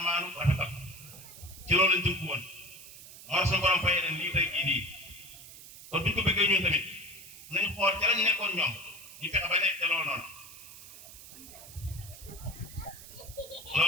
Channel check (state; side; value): noise; right; hiss, 16 dB below the sound